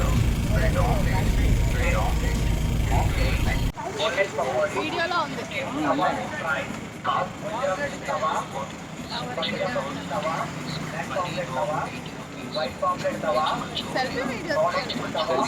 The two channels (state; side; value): identical; both; correlation 1.00